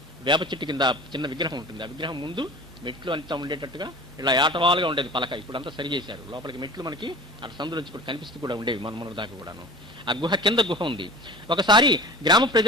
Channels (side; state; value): both; normal; correlation 0.38